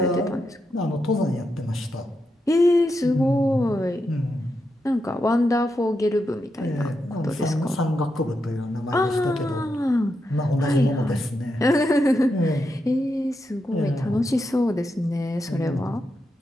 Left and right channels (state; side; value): normal; both; correlation 0.85